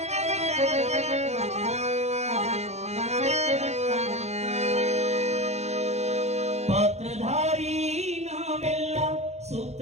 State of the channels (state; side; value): late; left; 0.32 ms